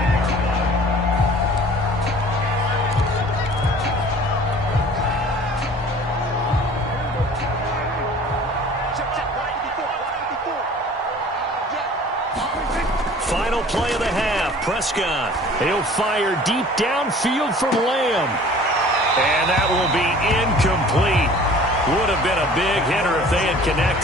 Final play of the half. Prescott. He'll fire deep downfield from Lamb. And that will be incomplete. Would have been a big hitter if they had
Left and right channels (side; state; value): both; normal; correlation 0.48